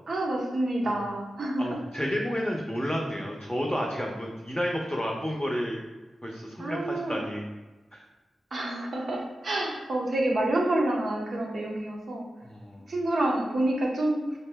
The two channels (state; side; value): normal; both; correlation 0.91